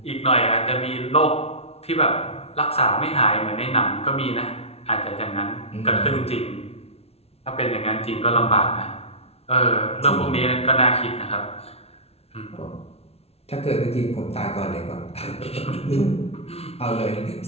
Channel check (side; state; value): right; late; 0.30 ms